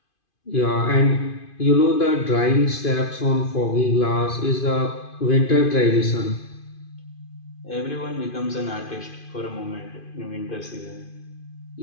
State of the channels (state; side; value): late; right; 2.5 ms